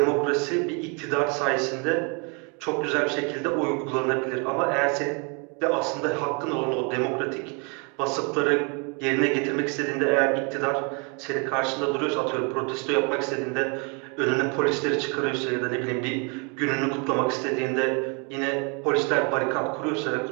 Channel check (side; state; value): left; quieter; 34.2 dB